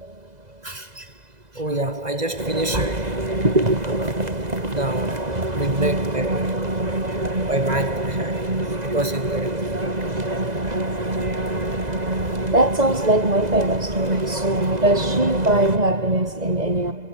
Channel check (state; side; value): late; left; 2.0 ms